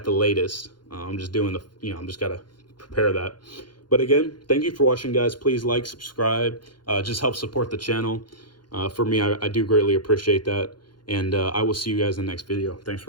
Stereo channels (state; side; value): late; right; 0.71 ms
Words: the latest. I'm just doing I'm just got to prepare that. But again, thank you for watching, guys. Please like, subscribe, just help support the channel. For me, I do greatly appreciate that. And I will see you guys in the next video. Thanks